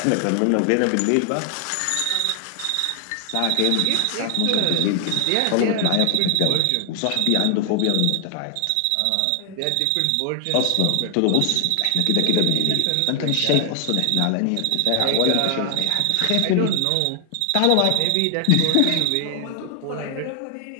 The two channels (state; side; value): different; both; correlation 0.00